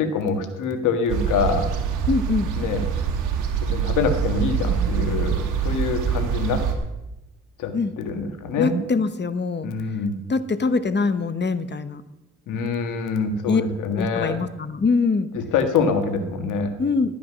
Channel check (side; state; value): both; normal; correlation 0.40